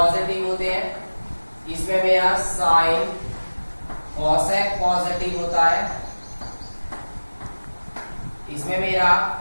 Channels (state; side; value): inverted; both; correlation -1.00